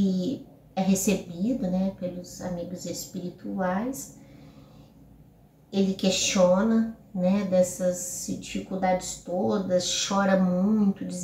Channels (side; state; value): both; identical; correlation 1.00